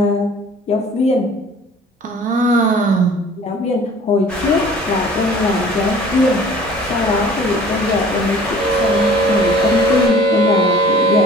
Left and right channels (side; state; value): both; normal; correlation 0.49